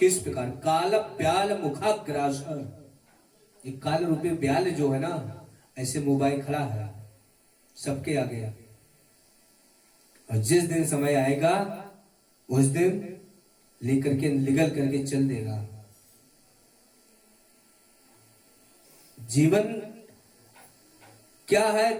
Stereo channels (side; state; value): both; identical; correlation 1.00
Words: प्रकार? काल ब्याल मुखाग्रास। ये काल रूपी ब्याल जो है ना, ऐसे मोबाइल खड़ा है सबके आगे, और जिस दिन समय आएगा उस दिन लेकर के निगल करके चल देगा। जीवन क्या